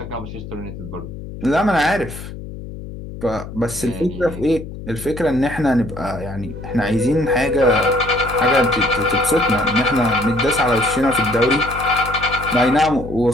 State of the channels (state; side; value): noise; left; hum, 11 dB below the sound